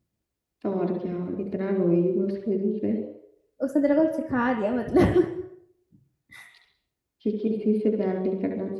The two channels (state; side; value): identical; both; correlation 1.00